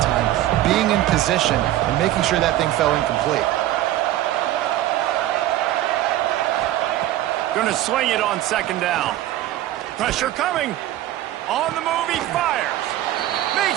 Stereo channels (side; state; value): left; quieter; 14.2 dB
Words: time, being in position and making sure that thing fell incomplete. Going to swing it on 2nd down. Pressure coming. On the move, he fires.